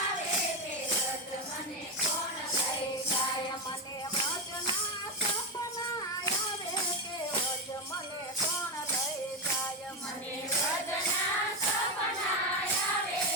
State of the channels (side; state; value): both; normal; correlation 0.11